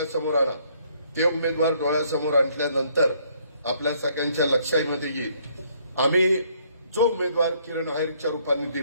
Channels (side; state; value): both; inverted; correlation -0.66